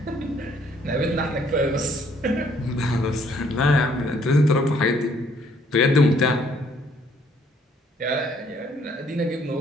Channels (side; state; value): both; normal; correlation 0.64